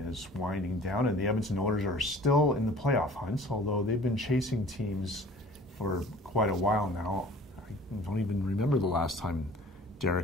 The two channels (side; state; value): both; normal; correlation 0.47